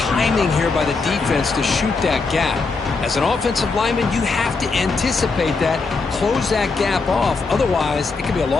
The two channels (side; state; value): right; quieter; 4.2 dB